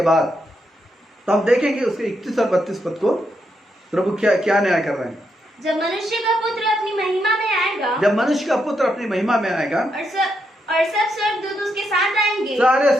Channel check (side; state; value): both; normal; correlation 0.81